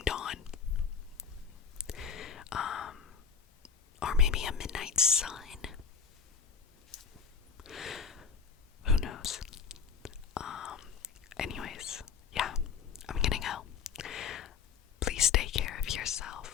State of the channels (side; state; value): right; quieter; 6.4 dB